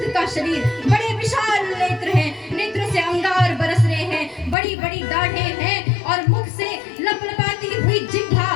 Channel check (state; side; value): drops out; right; at 4.5 s